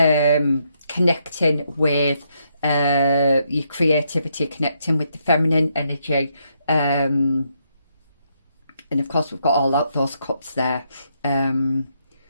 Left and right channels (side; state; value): both; inverted; correlation -0.77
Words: with your creativity, connecting with the feminine energy. And of course, we've got all those cups there.